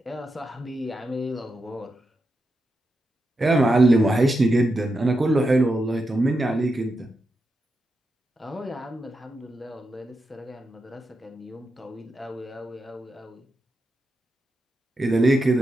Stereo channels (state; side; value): normal; both; correlation 0.87